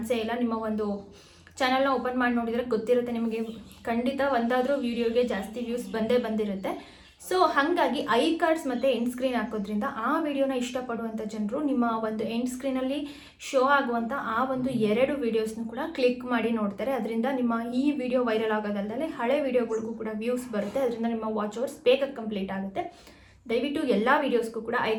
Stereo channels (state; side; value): identical; both; correlation 1.00